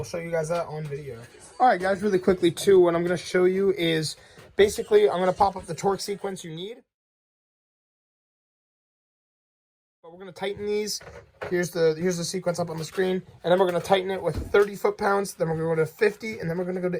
show you guys that on video. All right, guys, really quickly, too, what I'm going to show you is basically I'm going to pop up the torque sequence you need. But we're going to tighten these. Here's the sequence up on the screen. And then we're going to tighten it with 30 foot-pounds. Then we're going to go to 50. And then we're going to go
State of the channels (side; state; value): both; identical; correlation 1.00